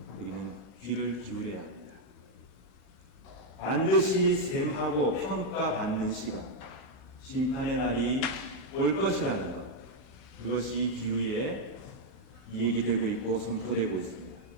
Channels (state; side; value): late; right; 16 ms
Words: 우리는 귀를 기울여야 합니다. 반드시 셈하고 평가받는 시간, 심판의 날이 올 것이라는 것, 그것이 비유에 얘기되고 있고 선포되고 있습니다.